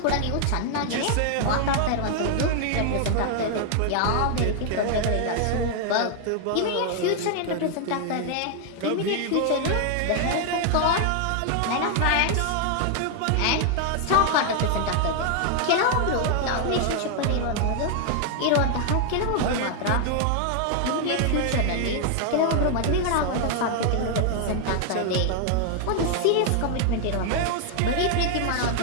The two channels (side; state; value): both; different; correlation 0.00